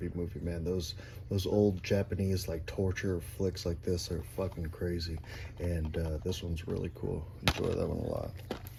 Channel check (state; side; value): identical; both; correlation 1.00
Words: movie, man. Those old Japanese like torture flicks like this are fucking crazy, and this one's really cool. Enjoy that one a lot.